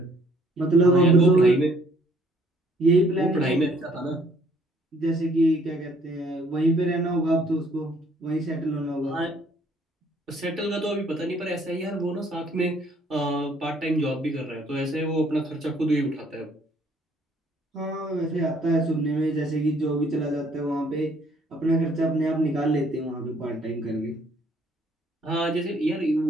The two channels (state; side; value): normal; both; correlation 0.63